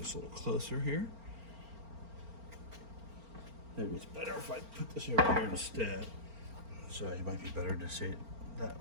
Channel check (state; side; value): late; left; 4.4 ms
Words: a little closer here. Maybe it's better if I put this over here instead. So it might be better to see it